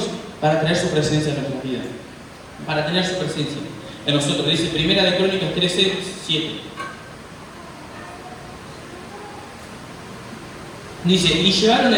para traer su presencia en nuestras vidas. Para tener su presencia en nosotros. Dice Primera de Crónicas 13:7. Dice, y llevaron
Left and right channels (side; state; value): both; identical; correlation 1.00